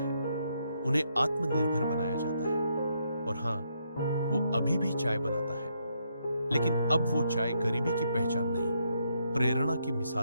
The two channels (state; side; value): inverted; both; correlation -0.77